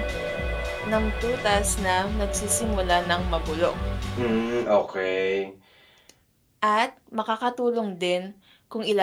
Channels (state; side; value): identical; both; correlation 1.00